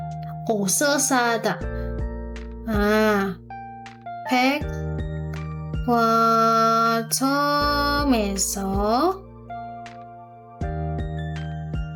옷을 사다. 백화점에서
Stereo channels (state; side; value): identical; both; correlation 1.00